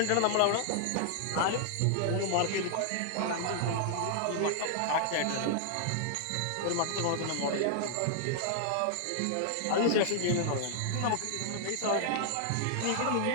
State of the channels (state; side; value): different; both; correlation 0.00